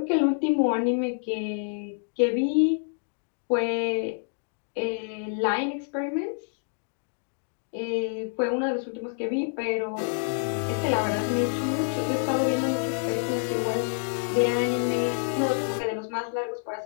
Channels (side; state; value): right; silent; digital silence